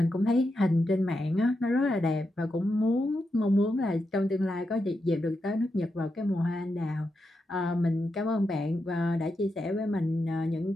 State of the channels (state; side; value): normal; both; correlation 0.86